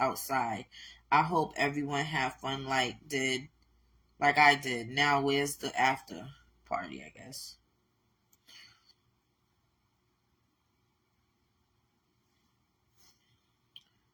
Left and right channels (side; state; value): both; identical; correlation 1.00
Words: I hope everyone had fun like I did. Now where's the after party, I guess.